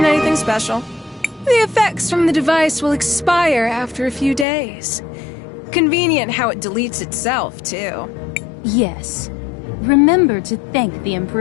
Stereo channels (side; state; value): right; drops out; at 4.5 s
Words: anything special. The effects from the device will expire after a few days. Convenient how it deletes itself, too. Yes. Remember to thank the